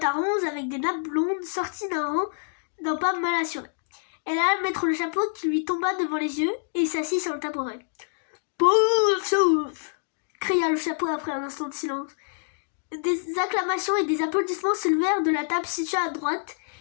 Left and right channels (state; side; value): silent; right; digital silence